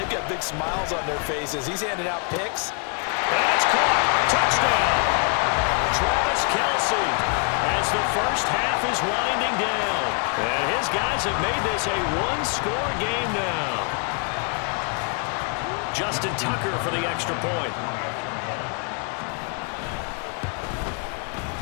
got big smiles on their faces. He's handing out picks. And it's caught. Touchdown. Travis Kelce as the first half is winding down. And his guys have made this a 1-score game now. Justin Tucker for the extra point.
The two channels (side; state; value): right; quieter; 39.0 dB